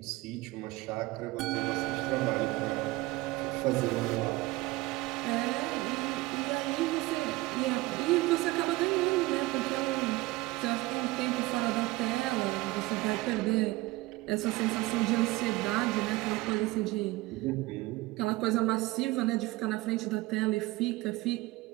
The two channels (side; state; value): left; quieter; 20.1 dB